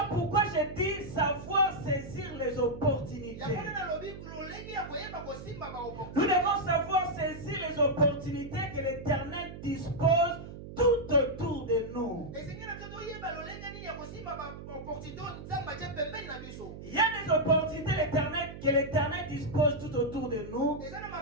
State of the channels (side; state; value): right; noise; hum, 12 dB below the sound